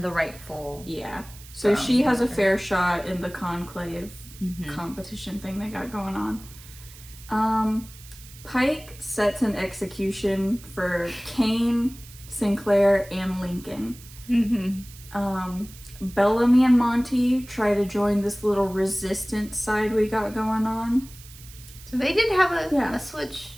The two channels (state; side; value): noise; right; hiss, 19 dB below the sound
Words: the rightful. Yeah. So she has a fair shot in the conclave competition thing they got going on. Pike sets an execution for Kane, Sinclair, and Lincoln. Bellamy and Monty try to join this little resistance side we got going on. So they did have a switch,